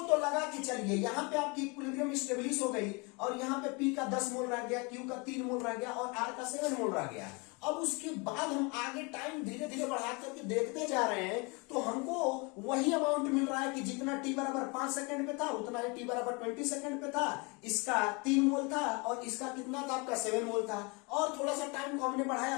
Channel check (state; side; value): quieter; right; 29.6 dB